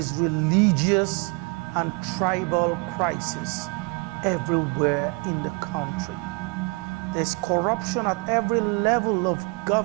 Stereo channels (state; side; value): quieter; left; 29.4 dB